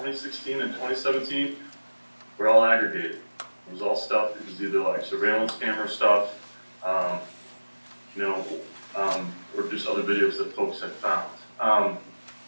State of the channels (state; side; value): inverted; both; correlation -1.00